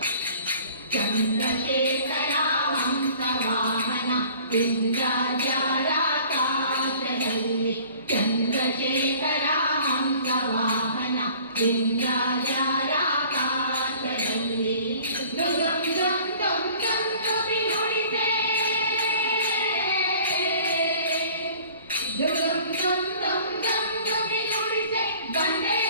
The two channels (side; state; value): both; inverted; correlation -0.50